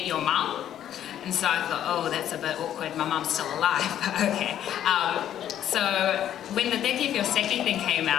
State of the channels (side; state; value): right; quieter; 10.8 dB